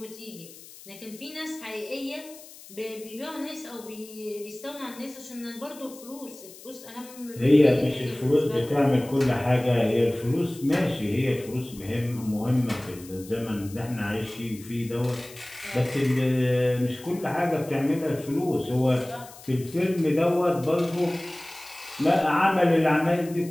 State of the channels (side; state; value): left; noise; hiss, 19 dB below the sound